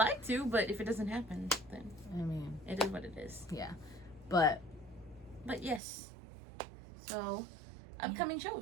to, but if it doesn't happen, then I mean, it is what it is. Yeah. But yes. So, upcoming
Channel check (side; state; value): left; drops out; at 5.8 s